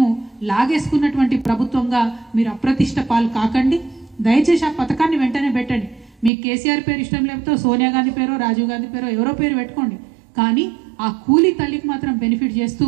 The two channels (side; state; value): left; drops out; at 6.3 s